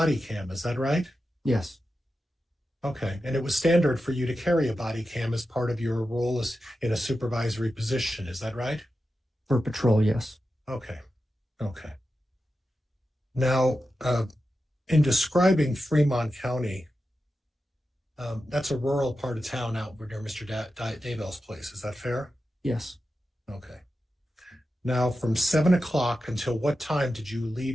cam, is that right? Yes. Okay. And it was standard for you to carry a body cam as part of your role as in a supervisory position, is that right? For patrol, yes. Okay. Okay. Now, in describing Fremont County, that's a rural part of town out near Mr. Daybell's place. Is that fair? Yes. Okay. Now, from 7 o'clock until what time did you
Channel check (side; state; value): both; normal; correlation 0.91